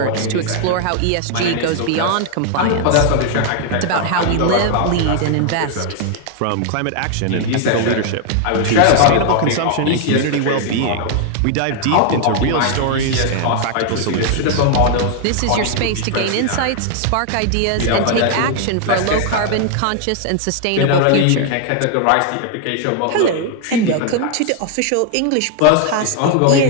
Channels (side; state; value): both; different; correlation 0.00